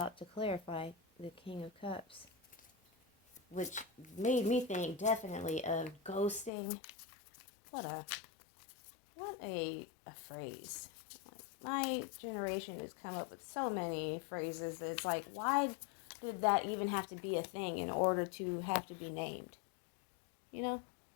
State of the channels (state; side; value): drops out; right; at 6.5 s